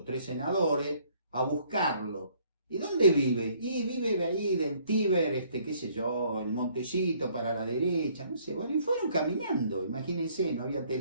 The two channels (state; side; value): inverted; both; correlation -0.62